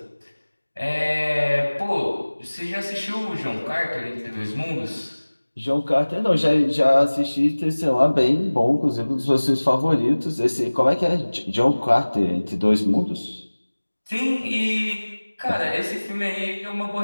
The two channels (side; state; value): both; inverted; correlation -1.00